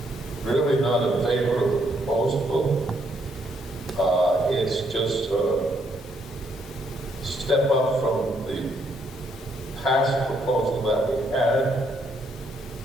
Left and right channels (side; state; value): both; normal; correlation 0.72